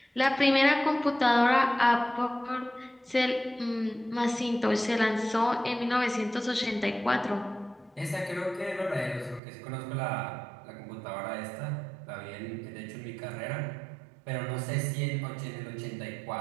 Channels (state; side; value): drops out; left; at 9.4 s